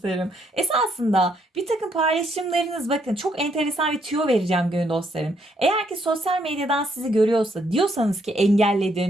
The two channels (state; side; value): normal; both; correlation 0.72